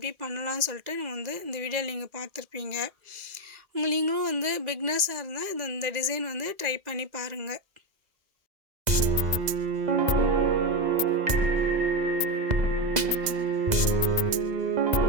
பண்ணலாம்னு சொல்லிட்டு நம்ம வந்து இந்த வீடியோவில் நீங்கள் பார்த்துருப்பீங்க. நீங்களும் வந்து பிகினர்ஸாக இருந்தால் இந்த டிசைன் வந்து ட்ரை பண்ணி பாருங்கள்.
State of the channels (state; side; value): late; left; 2.0 ms